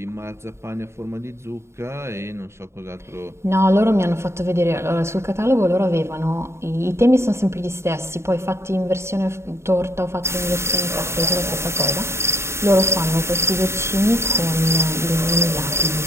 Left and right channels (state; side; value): late; left; 0.13 ms